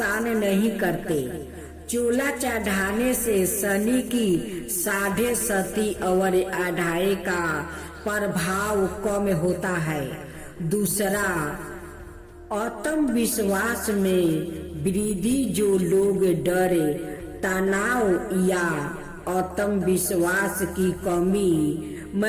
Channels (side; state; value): both; identical; correlation 1.00